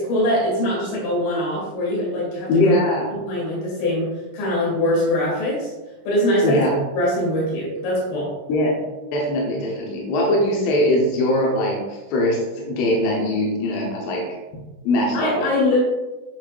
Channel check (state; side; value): late; right; 20 ms